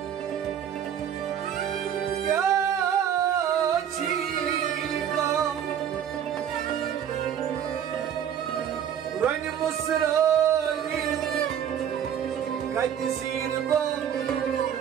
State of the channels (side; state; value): left; quieter; 9.2 dB